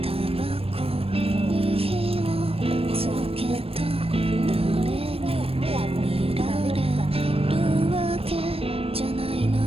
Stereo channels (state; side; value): late; left; 0.28 ms